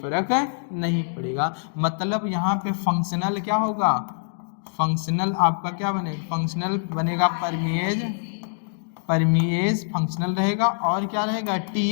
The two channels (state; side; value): silent; right; digital silence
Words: नहीं पड़ेगा। मतलब यहाँ पे फंक्शनल क्या होगा? फंक्शनल आपका क्या बनेगा? फंक्शनल बनेगा परमेज, परमिएज फंक्शनल रहेगा, और क्या रहेगा?